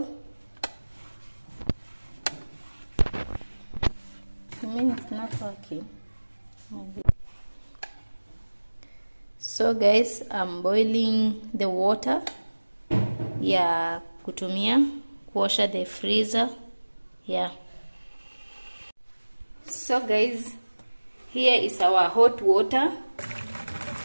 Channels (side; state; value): both; inverted; correlation -1.00